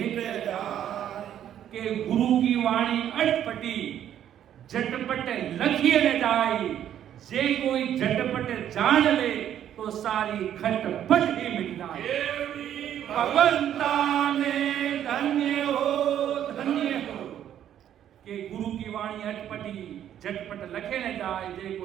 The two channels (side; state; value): left; quieter; 10.5 dB